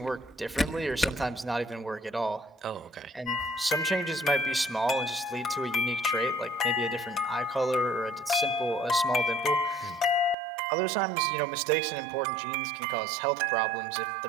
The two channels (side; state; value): left; drops out; at 10.4 s